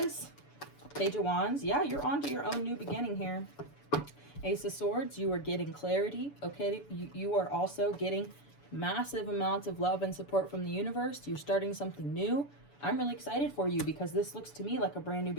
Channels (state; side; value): late; right; 7.0 ms